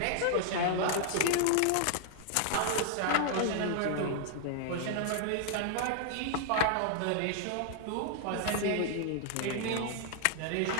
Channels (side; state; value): both; different; correlation 0.00